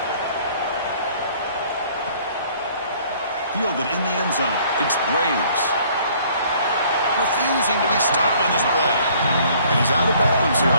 Fielded in the end zone. It's Graves. Refusing to be stopped on this play. And he's out of bounds here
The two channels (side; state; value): both; inverted; correlation -0.58